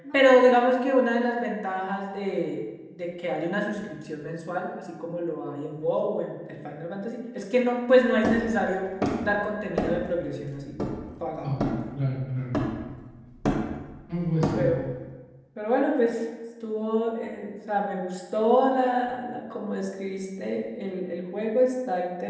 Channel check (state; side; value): identical; both; correlation 1.00